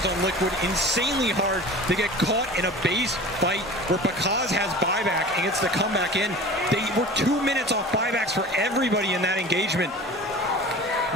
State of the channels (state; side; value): normal; both; correlation 0.39